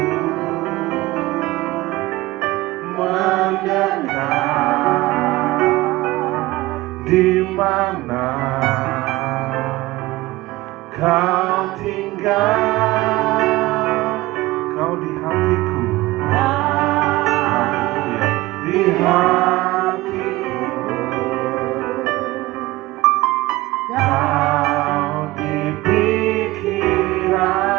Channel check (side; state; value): left; quieter; 19.2 dB